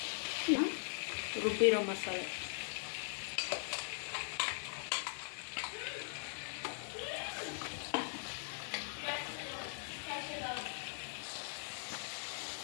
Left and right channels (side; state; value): right; silent; digital silence